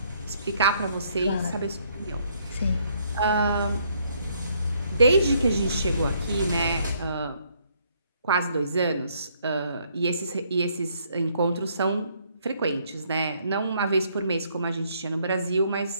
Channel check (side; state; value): both; inverted; correlation -0.69